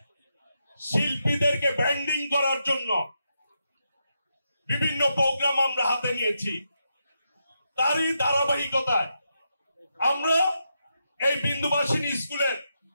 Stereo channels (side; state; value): both; inverted; correlation -0.84